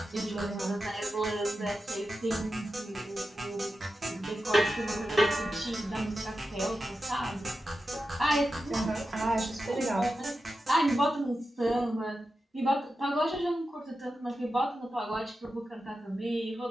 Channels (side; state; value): both; normal; correlation 0.91